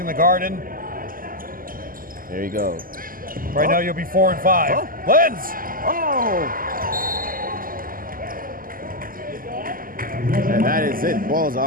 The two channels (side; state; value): left; late; 0.41 ms